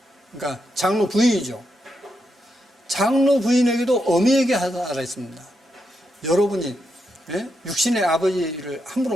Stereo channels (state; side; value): normal; both; correlation 0.83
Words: 그러니까 장로 부인이죠. 장로 부인에게도 어미에게 하라 했습니다. 여러분이 육신의 아버지를